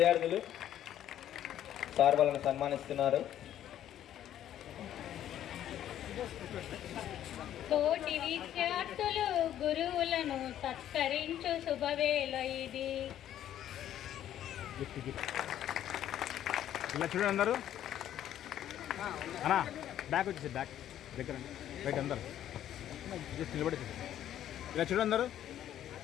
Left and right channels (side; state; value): right; quieter; 11.3 dB